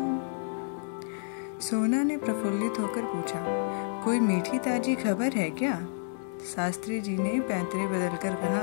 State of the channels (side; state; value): right; silent; digital silence